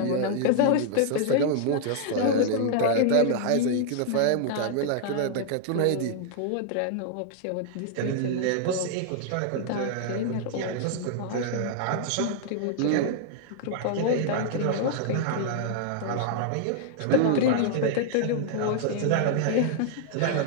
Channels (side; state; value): both; different; correlation 0.00